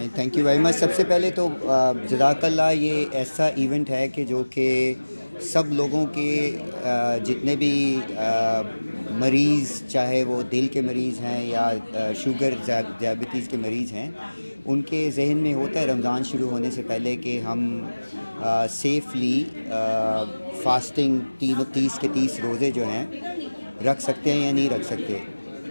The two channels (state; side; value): inverted; both; correlation -1.00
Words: تھینک یو ویری مچ. سب سے پہلے تو جزاک اللہ. یہ ایسا ایونٹ ہے کہ جو کہ سب لوگوں کے جتنے بھی مریض, چاہے وہ دل کے مریض ہیں یا شوگر ڈائبٹیز کے مریض ہیں, ان کے ذہن میں ہوتا ہے رمضان شروع ہونے سے پہلے کہ ہم سیفلی فاسٹنگ 30 کے 30 روزے جو ہیں رکھ سکتے ہیں یا نہیں رکھ سکتے.